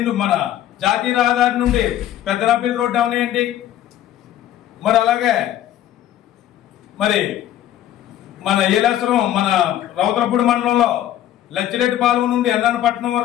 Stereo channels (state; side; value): quieter; right; 12.1 dB